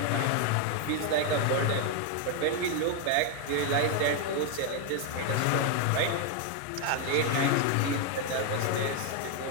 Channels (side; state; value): both; different; correlation 0.00